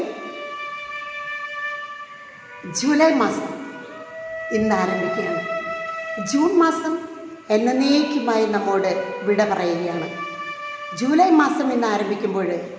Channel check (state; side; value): identical; both; correlation 1.00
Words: ജൂലൈ മാസം ഇന്ന് ആരംഭിക്കുകയാണ്. ജൂൺ മാസം എന്നേക്കുമായി നമ്മോട് വിട പറയുകയാണ്. ജൂലൈ മാസം ഇന്ന് ആരംഭിക്കുമ്പോൾ